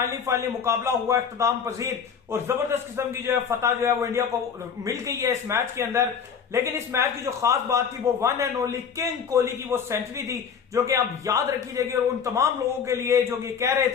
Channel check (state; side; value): quieter; right; 6.8 dB